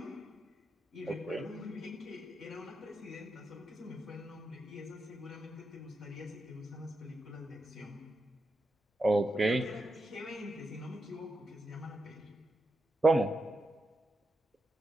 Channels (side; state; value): both; normal; correlation 0.86